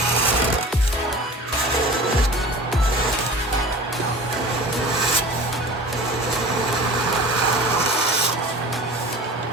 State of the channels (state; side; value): normal; both; correlation 0.39